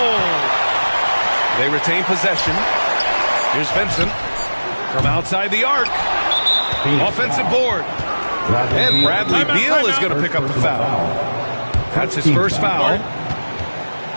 They retain possession. Here's Vincent from outside the arc. Offensive board. And Bradley Beal is going to pick up the foul. That's his first foul.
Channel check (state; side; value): inverted; both; correlation -1.00